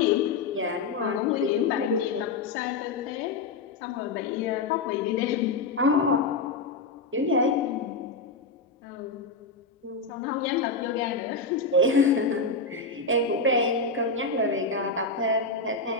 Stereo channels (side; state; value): right; quieter; 3.9 dB